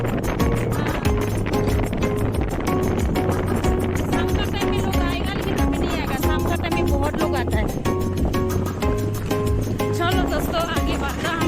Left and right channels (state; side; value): identical; both; correlation 1.00